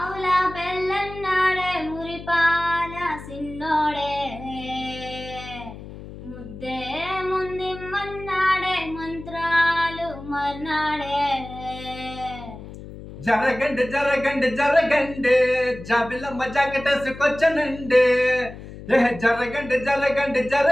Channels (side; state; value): left; noise; hum, 14 dB below the sound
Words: బెల్లన్నాడే మురిపాల సిన్నోడే ముద్దే ముందిమ్మన్నాడే మంత్రాలు మర్నాడే జరగండి జరగండి జరగండి జాబిలమ్మ జాకెటేసుకొచ్చనండి. జరగండి జరగండి